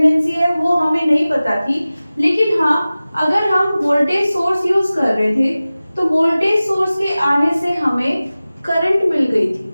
है वो हमें नहीं पता थी, लेकिन हाँ, अगर हम वोल्टेज सोर्स यूज कर रहे थे तो वोल्टेज सोर्स के आने से हमें करंट मिल गई थी,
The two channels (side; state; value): both; inverted; correlation -0.97